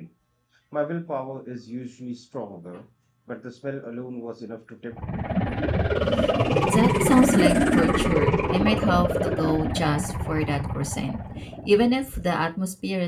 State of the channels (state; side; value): identical; both; correlation 1.00